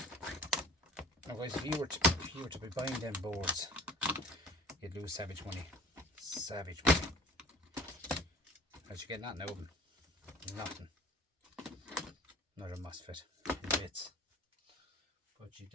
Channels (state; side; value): normal; both; correlation 0.46